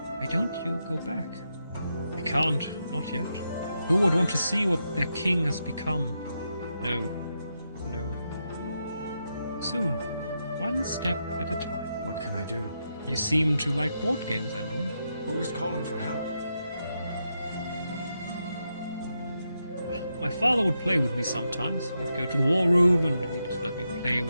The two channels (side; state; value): both; inverted; correlation -0.84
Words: why don't you go back? I can't, not yet. Who would want to see what their king has become? No. Soon. One step at a time. What can I do? You seem to like board games, Andor. Who is calling for help? My father would play with me sometimes. He'd go to the war room and he'd let me play